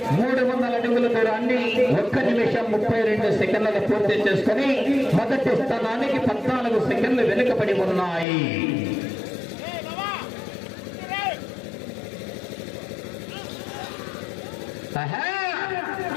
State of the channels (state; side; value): drops out; right; at 8.2 s